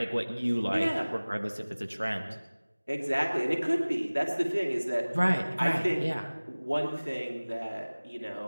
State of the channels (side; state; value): both; inverted; correlation -1.00